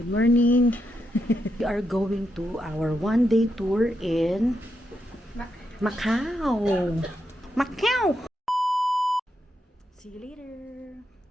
morning. We are going to our one-day tour in Macau. Macau! See you later.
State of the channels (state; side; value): normal; both; correlation 0.83